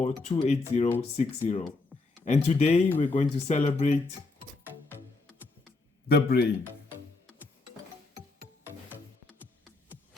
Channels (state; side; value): quieter; right; 3.5 dB